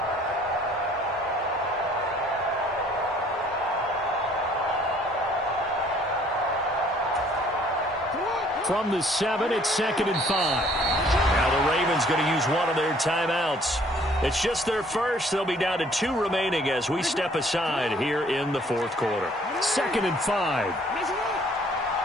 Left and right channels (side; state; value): both; normal; correlation 0.59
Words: From the 7, it's 2nd and 5. Now the Ravens going to use one of their timeouts. It's just their first. They'll be down to 2 remaining as we step aside here in the 4th quarter. 2nd and 5.